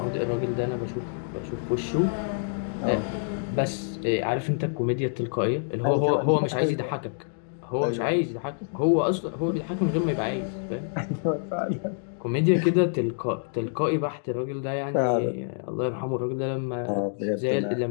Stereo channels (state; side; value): silent; right; digital silence